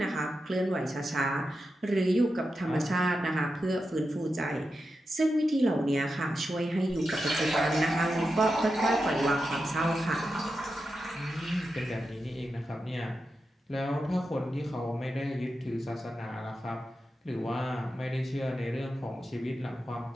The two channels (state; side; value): normal; both; correlation 0.89